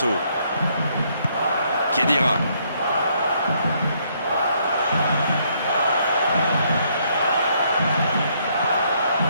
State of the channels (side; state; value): both; inverted; correlation -0.70